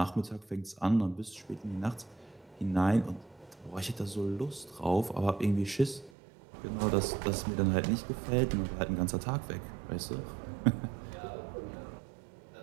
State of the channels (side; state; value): left; drops out; at 6.1 s